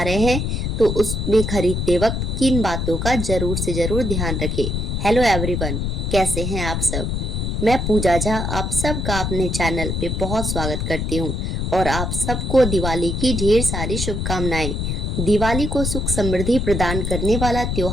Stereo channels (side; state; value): left; noise; rumble, 1 dB below the sound